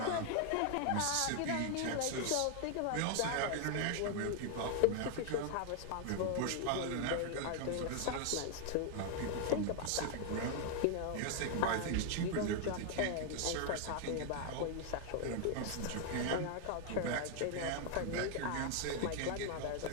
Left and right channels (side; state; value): both; different; correlation 0.00